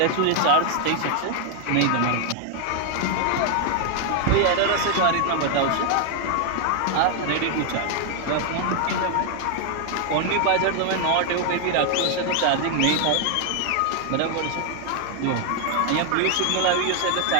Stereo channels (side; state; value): both; different; correlation 0.00